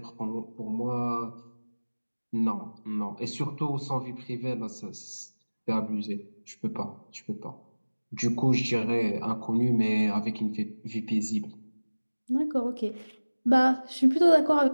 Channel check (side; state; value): both; inverted; correlation -1.00